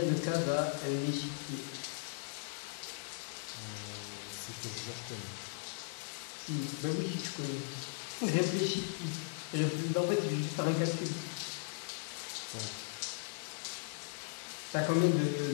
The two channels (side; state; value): right; silent; digital silence